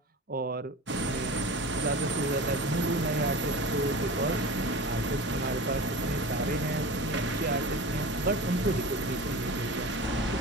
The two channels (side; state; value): both; normal; correlation 0.32